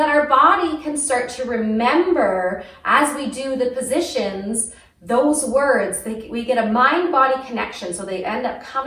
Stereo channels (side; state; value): both; identical; correlation 1.00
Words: our body can start to remember as we do the positions, those words. We get a mind-body connection, so they end up